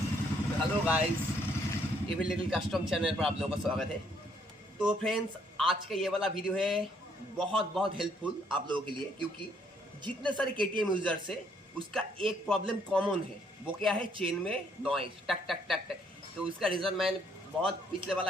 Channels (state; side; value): normal; both; correlation 0.68